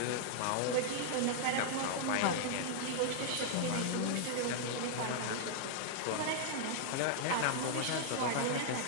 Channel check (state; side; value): different; both; correlation -0.01